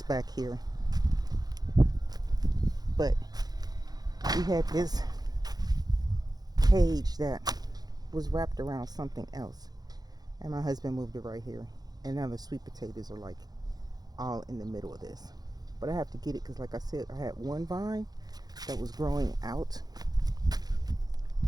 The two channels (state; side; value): late; left; 0.19 ms